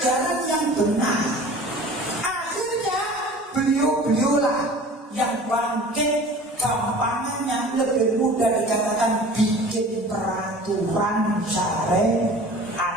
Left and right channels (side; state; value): both; normal; correlation 0.43